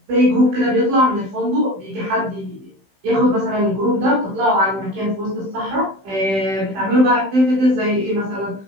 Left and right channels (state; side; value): late; left; 15 ms